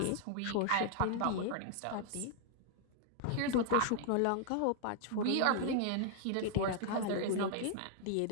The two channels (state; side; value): different; both; correlation 0.00